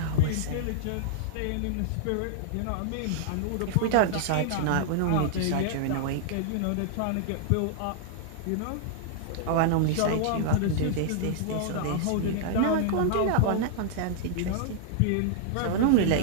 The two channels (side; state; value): both; different; correlation -0.01